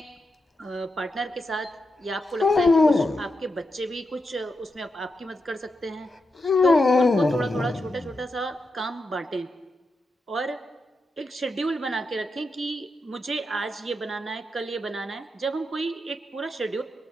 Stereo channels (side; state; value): both; normal; correlation 0.86